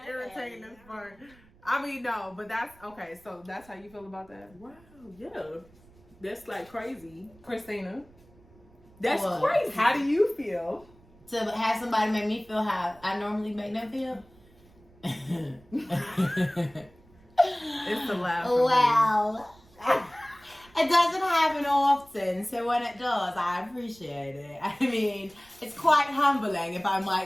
irritating as fuck. I mean, no, but that's okay. So that's how you feel about that, Wow, yeah. That's like crazy. Christina? That's What? crazy. How do you feel? to have somebody make me feel how I normally make them feel. It's the laugh. Well, it doesn't happen often, so when it does, I appreciate it. I mean, it's quite humbling, if I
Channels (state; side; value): noise; right; rumble, 27 dB below the sound